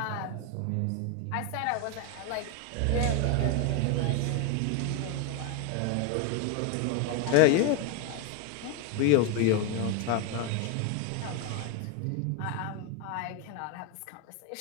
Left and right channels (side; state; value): both; different; correlation 0.02